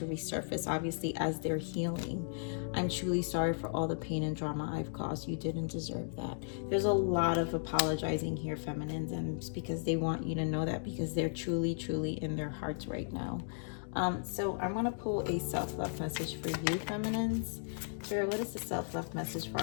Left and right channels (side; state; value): right; silent; digital silence